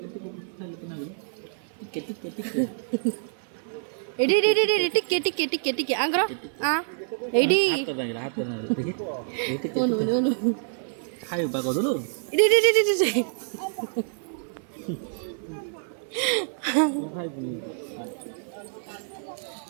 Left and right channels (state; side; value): silent; left; 55 dB below the other